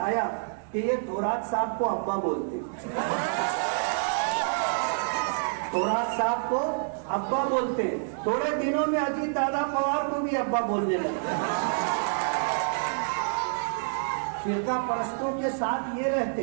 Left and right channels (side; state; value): left; silent; digital silence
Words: کہ یہ تھورات صاحب کو ابا بولتے, تھورات صاحب کو ابا بولتے. تھوڑے دنوں میں اجیت دادا پوار کو بھی ابا بولنے لگے. فرقہ پرستوں کے ساتھ یہ